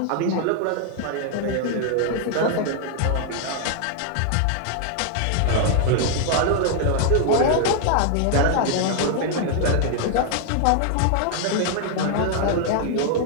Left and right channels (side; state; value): both; different; correlation 0.00